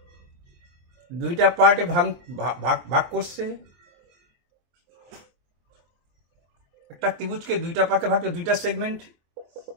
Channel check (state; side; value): late; left; 23 ms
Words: দুইটা পার্টে ভাগ করছে, একটা ত্রিভুজকে দুইটা পার্টে ভাগ করে দুইটা